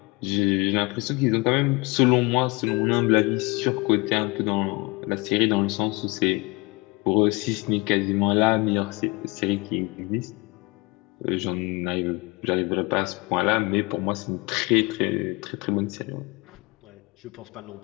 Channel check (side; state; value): right; quieter; 26.2 dB